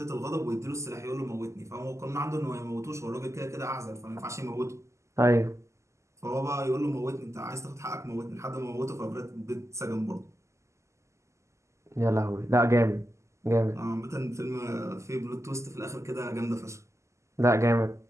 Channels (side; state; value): left; late; 0.14 ms